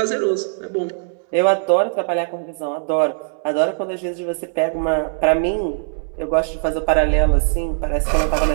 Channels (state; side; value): silent; left; 66 dB below the other